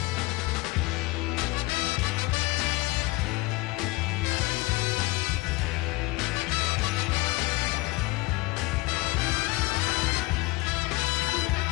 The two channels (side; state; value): right; quieter; 22.2 dB